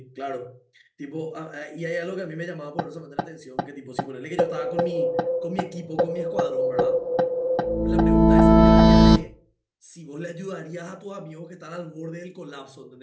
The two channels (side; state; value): both; identical; correlation 1.00